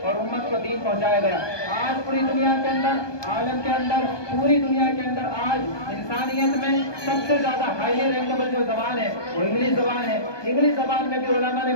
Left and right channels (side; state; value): right; late; 1.2 ms